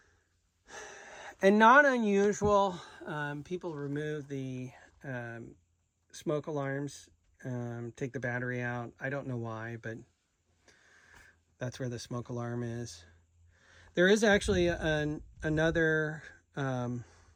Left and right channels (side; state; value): both; identical; correlation 1.00